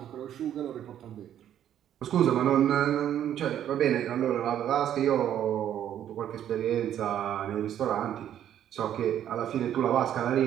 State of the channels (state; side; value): quieter; left; 10.6 dB